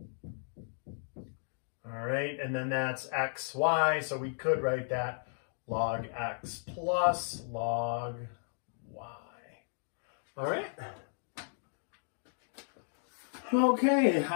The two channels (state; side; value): silent; right; digital silence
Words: All right, and then that's x, y, so we could write that log x plus log y. All right. Okay,